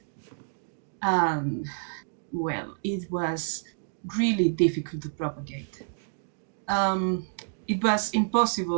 and well, it was really difficult to propagate. It was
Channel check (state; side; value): silent; left; digital silence